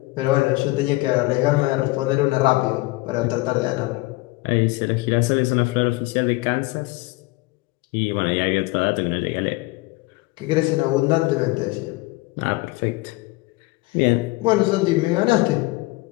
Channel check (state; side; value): quieter; right; 22.0 dB